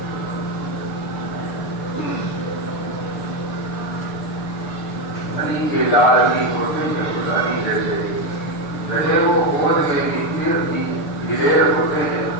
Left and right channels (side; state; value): right; late; 6.6 ms